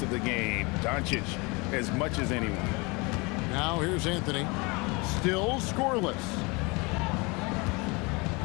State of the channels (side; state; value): right; quieter; 27.3 dB